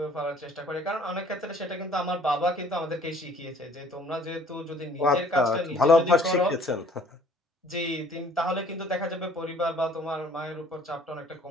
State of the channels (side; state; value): both; normal; correlation 0.56